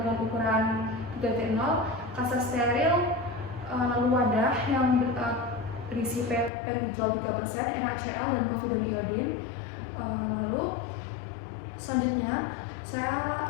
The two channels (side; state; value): right; drops out; at 6.5 s